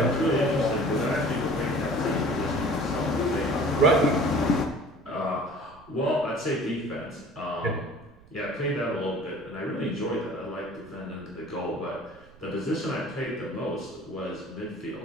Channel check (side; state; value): right; noise; rumble, 25 dB below the sound